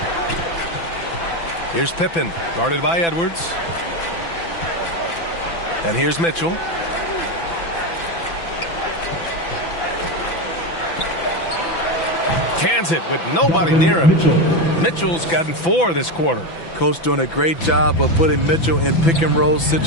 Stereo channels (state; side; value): late; right; 6.0 ms